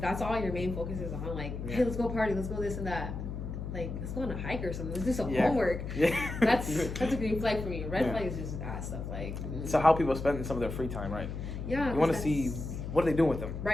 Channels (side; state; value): left; noise; hum, 6 dB below the sound